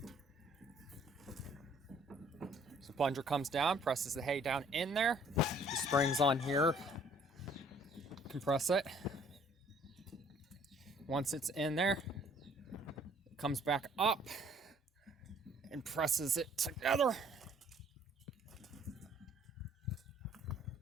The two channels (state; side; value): normal; both; correlation 0.58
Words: So plunger comes down, presses the hay down in there. The springs on here compress it. Once it's in there, it comes back up and presses it together.